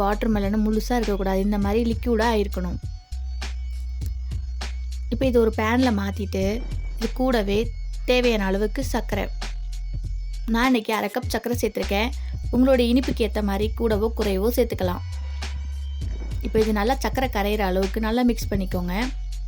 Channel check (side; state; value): both; identical; correlation 1.00